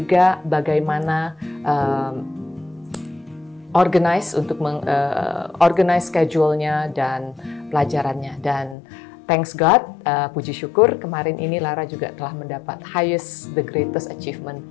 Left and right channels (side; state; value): right; drops out; at 8.8 s